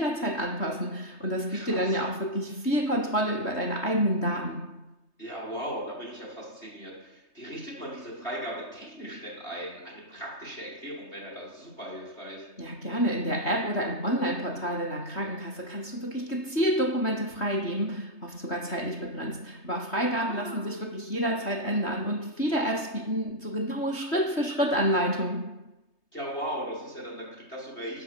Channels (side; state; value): right; late; 3.2 ms